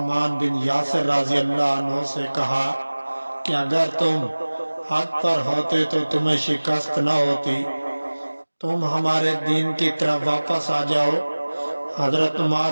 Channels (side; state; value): both; inverted; correlation -1.00